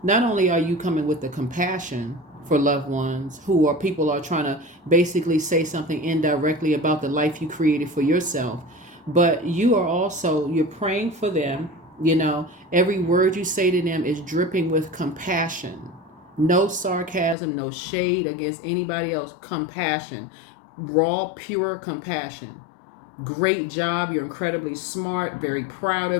not only are you coming with the compassion for loved ones who are people are trying to basically say something indirectly about the life you created for yourself, but you're praying for them. Every word you say to them is dripping with compassion. No sarcasm, no shade against anybody else. Compassion. Raw, pure compassion. Great job. You're incredibly smart. Very proud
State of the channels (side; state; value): right; drops out; at 17.4 s